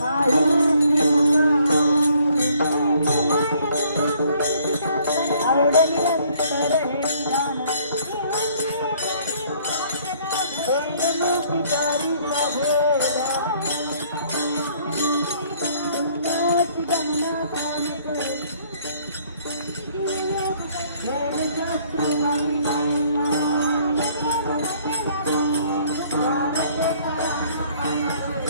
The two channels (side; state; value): both; inverted; correlation -0.61